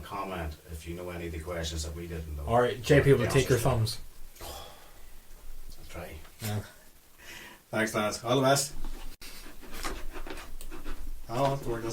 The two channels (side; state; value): both; identical; correlation 1.00